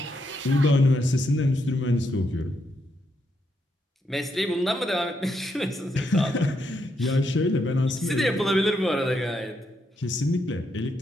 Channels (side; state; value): both; normal; correlation 0.79